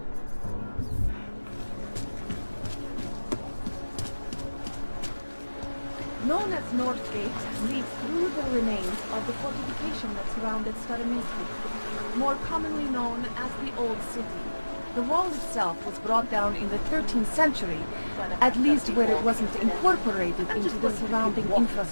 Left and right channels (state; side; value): inverted; both; correlation -1.00